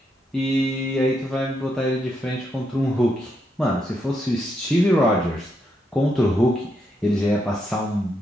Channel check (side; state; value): both; normal; correlation 0.80